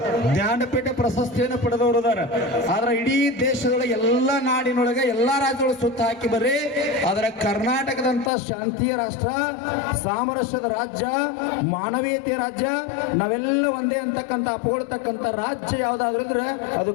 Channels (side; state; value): right; drops out; at 8.3 s